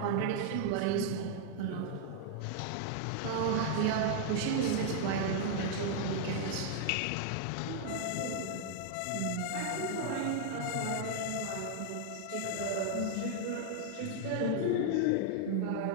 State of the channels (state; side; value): different; both; correlation 0.00